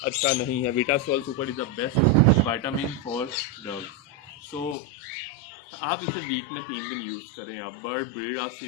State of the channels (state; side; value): drops out; right; at 4.8 s